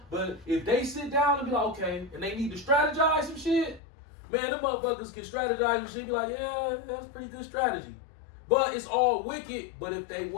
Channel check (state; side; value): drops out; right; at 3.8 s